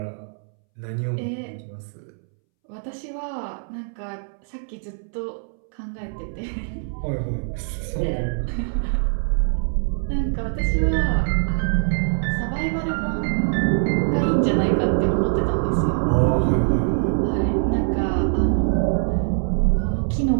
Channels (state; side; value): silent; left; 63 dB below the other